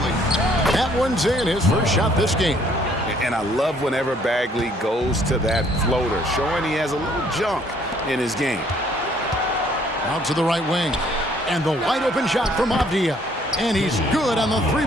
That one's in, his first shot this game. And I love whenever Bagley goes to that floater, showing he has a little junk in his game. Out to the right wing. And the wide open shot from Avdia. And he's good on the 3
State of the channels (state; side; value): normal; both; correlation 0.63